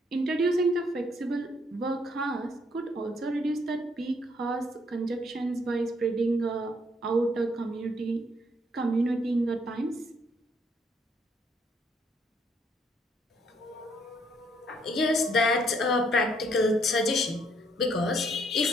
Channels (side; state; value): both; normal; correlation 0.69